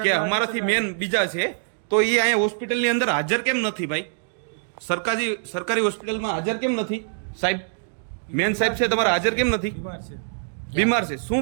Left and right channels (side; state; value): left; silent; digital silence